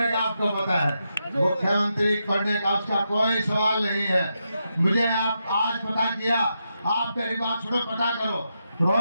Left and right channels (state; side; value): inverted; both; correlation -0.85